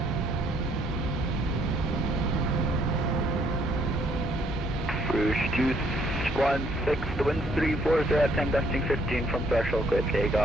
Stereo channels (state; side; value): normal; both; correlation 0.67